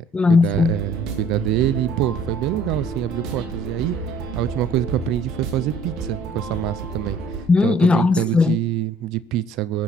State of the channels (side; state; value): both; normal; correlation 0.57